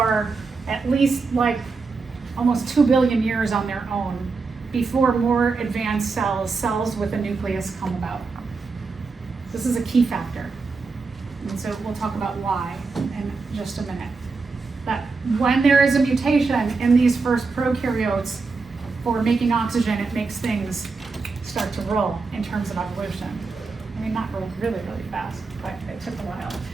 at least like almost 2 billion years on their own before more advanced cells with a nucleus come about. This is a key factor. And so we'll talk about why in just a minute. That when there is a mutation in these first prokaryotes for making oxygen, it makes things start to roll in terms of evolution. I mean, not roll really, really fast, but it took a while.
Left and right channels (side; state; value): left; quieter; 4.4 dB